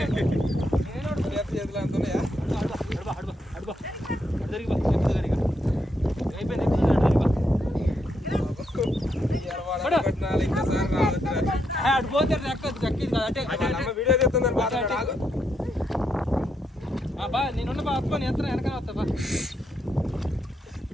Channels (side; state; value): both; normal; correlation 0.80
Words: చేతులు అంటున్నాయా? అడిపోతే వీడియో చెప్తుందని బా నేనున్న బా అత్తుకొని ఎంత వెనకాల వస్తా బా.